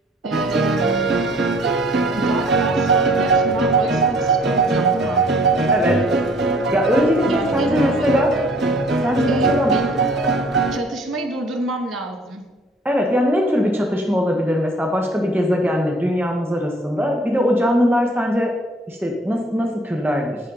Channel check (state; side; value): normal; both; correlation 0.55